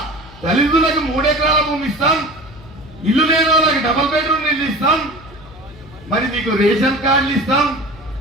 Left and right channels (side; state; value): left; noise; hum, 21 dB below the sound